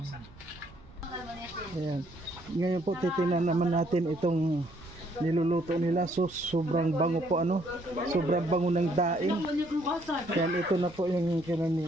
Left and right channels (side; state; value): right; noise; rumble, 22 dB below the sound